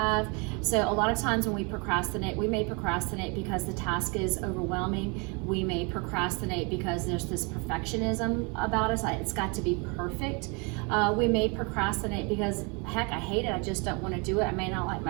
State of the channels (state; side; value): quieter; left; 31.8 dB